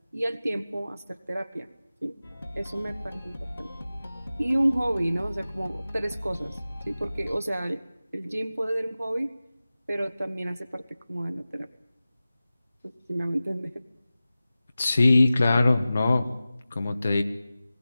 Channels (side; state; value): both; inverted; correlation -0.96